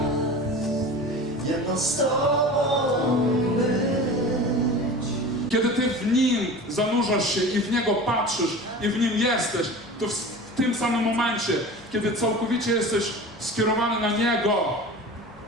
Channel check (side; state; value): both; normal; correlation 0.35